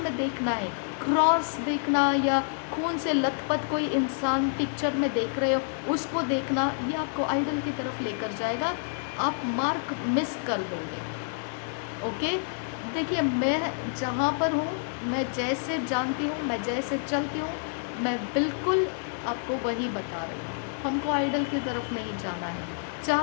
देखना है, क्रॉस देखना या खून से लथपथ कोई इंसान पिक्चर में देख रहे हो उसको देखना, ये आपको आइडल की तरफ लेकर जाएगा, आप मार्क मिस कर दोगे। ओके, देखिए मैं जहाँ पर हूँ, मैं जैसे जानती हूँ, मैं जैसे चलती हूँ, मैं बिल्कुल आपको वही बता रही हूँ। हमको आइडल की तरफ नहीं जाना है।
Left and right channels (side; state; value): right; silent; digital silence